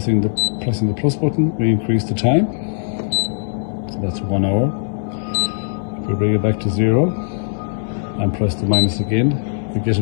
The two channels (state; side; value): silent; right; digital silence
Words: the plus button, we increase the time, so that's 1 hour. If we bring it back to 0 and press the minus again, we get